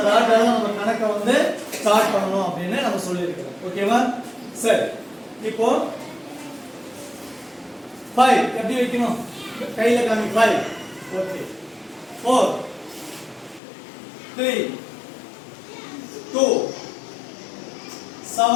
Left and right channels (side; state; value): right; drops out; at 13.6 s